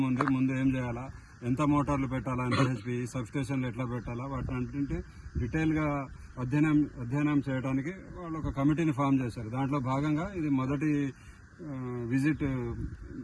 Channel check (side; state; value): both; identical; correlation 1.00